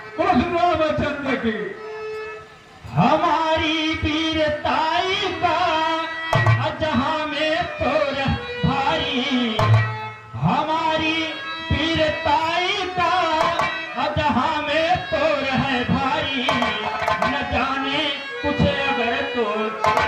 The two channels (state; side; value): identical; both; correlation 1.00